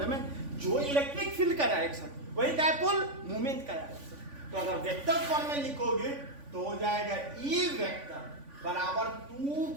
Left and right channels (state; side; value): late; left; 3.5 ms